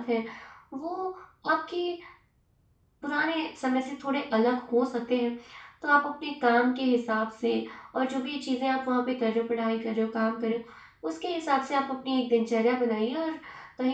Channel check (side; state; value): both; identical; correlation 1.00